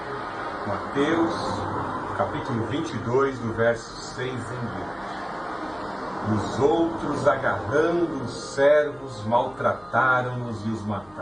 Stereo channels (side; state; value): left; noise; hum, 27 dB below the sound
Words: Mateus, capítulo 22, do verso 6 em diante. Os outros, agarrando os servos, maltrataram-nos e os